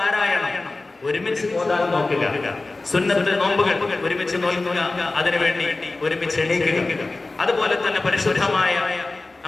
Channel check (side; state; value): right; quieter; 3.3 dB